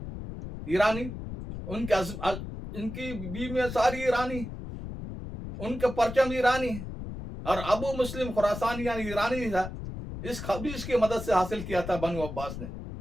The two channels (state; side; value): noise; left; rumble, 8 dB below the sound